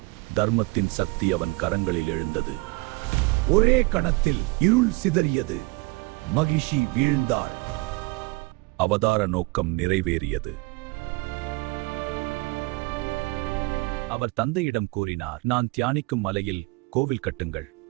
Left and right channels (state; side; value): quieter; left; 25.7 dB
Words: தர்மத்தின் சக்தி அவன் கரங்களில் எழுந்தது. ஒரே கணத்தில் இருள் சிதறியது. மகிஷி வீழ்ந்தாள். அவதார நோக்கம் நிறைவேறியது. அவர் தந்தையிடம் கூறினார், நான் தியானிக்கும் மலையில் கோவில் கட்டுங்கள்.